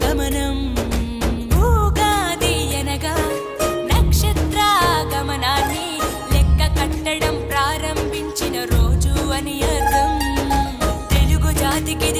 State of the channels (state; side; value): identical; both; correlation 1.00